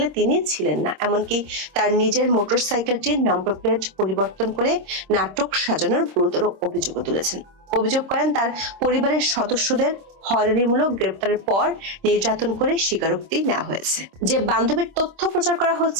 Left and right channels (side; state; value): left; late; 26 ms